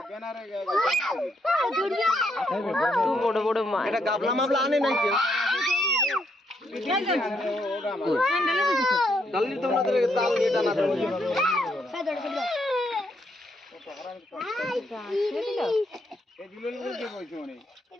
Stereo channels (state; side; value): normal; both; correlation 0.75